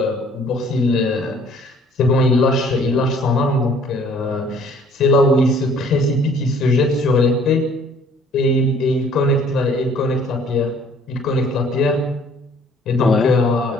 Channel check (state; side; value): normal; both; correlation 0.57